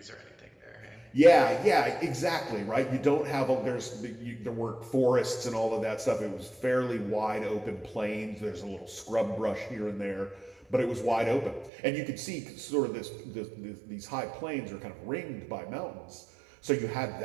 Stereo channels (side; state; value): left; drops out; at 11.7 s